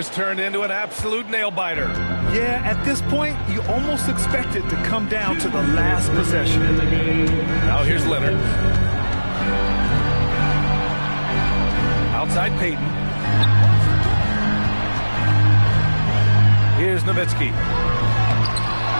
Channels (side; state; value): both; inverted; correlation -1.00